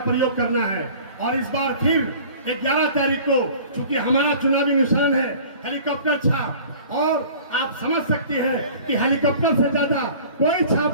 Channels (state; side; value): inverted; both; correlation -0.46